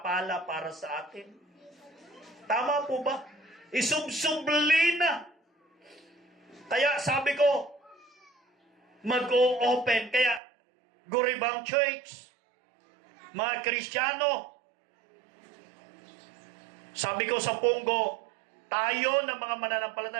para sa atin. Tama po ba? Isubsubli na. Kaya sabi ko, mag-o-open. Kaya, Guribang Church, mga Kristiyano, sabi ko sa Punggo, tayo na mga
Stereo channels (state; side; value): drops out; left; at 10.4 s